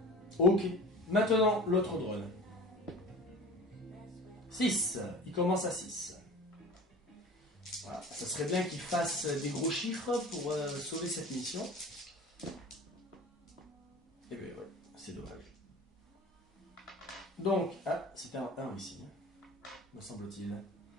Ok, maintenant l'autre drone. 6, il commence à 6. Voilà, ça serait bien qu'il fasse des gros chiffres pour sauver cette mission. Et bien ouais, c'est dommage. Donc, ah, c'était un 1 ici, me semble-t-il.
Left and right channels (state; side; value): normal; both; correlation 0.39